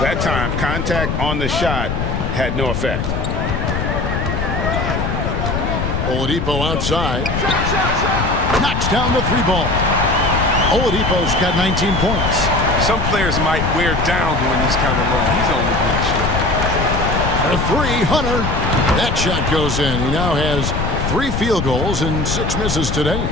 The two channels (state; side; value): noise; left; rumble, 2 dB below the sound